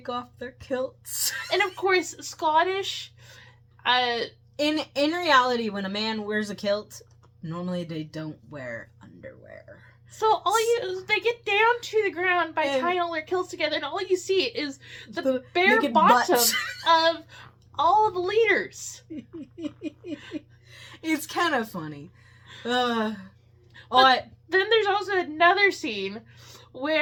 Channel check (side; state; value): both; identical; correlation 1.00